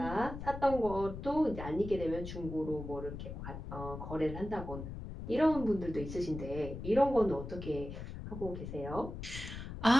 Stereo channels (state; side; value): noise; left; rumble, 9 dB below the sound